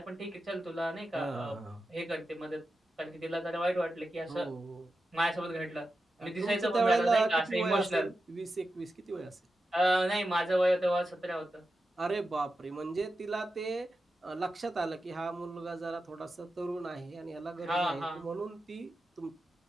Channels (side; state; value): both; normal; correlation 0.90